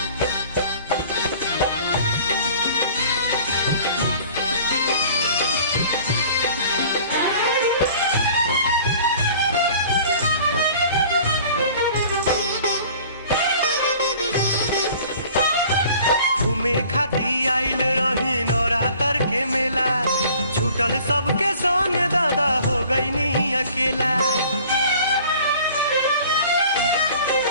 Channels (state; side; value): inverted; both; correlation -0.49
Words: घूमे खाती आइल रही नवरात्र के मेला, छूटल सबके संग दादा हो गई नी अकेला।